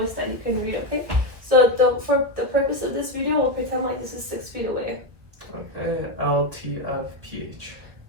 that you can read, okay? So for the purpose of this video, we'll pretend like this is 6 feet away. Okay. LTFPH.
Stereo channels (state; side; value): late; left; 1.7 ms